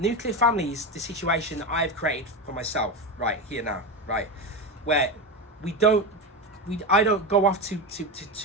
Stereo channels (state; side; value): normal; both; correlation 0.18